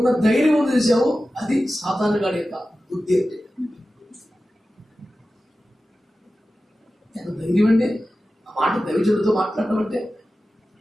ధైర్యం చేసావు, అది సాతాను గాడి యొక్క బుద్ధి. అంటే ఎంత ధైర్యం అండి ఆ మాట దైవజనుడితో మాట్లాడటం అంటే.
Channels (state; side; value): normal; both; correlation 0.94